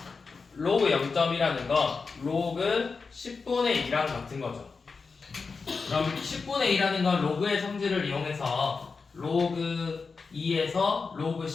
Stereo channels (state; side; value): quieter; right; 4.7 dB